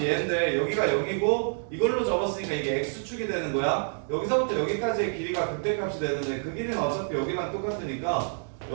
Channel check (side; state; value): left; silent; digital silence